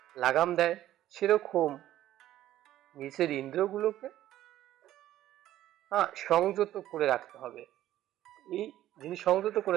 লাগাম দেয়, সেরকম নিজের ইন্দ্রগুলোকে সংযত করে রাখতে হবে। এই যিনি সংযত করে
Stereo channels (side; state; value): left; quieter; 13.3 dB